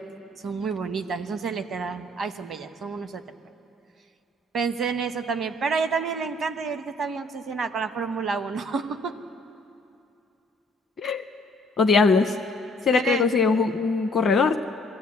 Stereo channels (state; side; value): normal; both; correlation 0.60